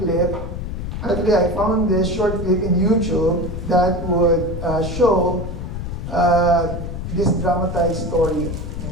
Actually, I found this short clip in YouTube that would show this dramatized story.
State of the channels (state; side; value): noise; left; rumble, 6 dB below the sound